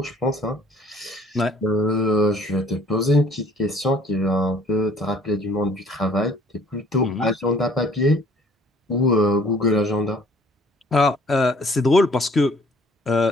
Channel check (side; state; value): both; normal; correlation 0.56